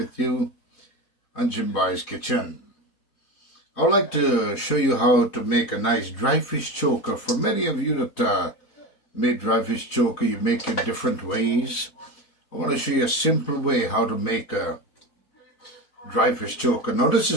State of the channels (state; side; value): late; right; 4.1 ms